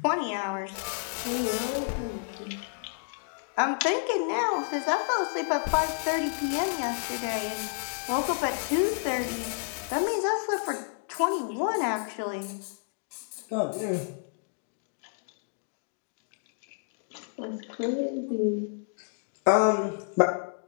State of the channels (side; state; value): right; silent; digital silence